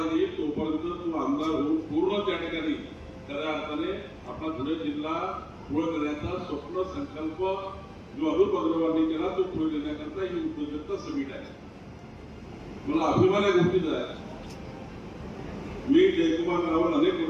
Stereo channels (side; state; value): both; identical; correlation 1.00